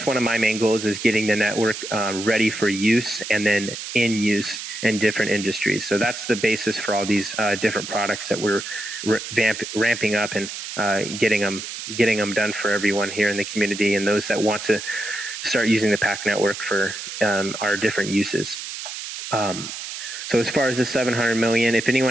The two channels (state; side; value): noise; right; hiss, 8 dB below the sound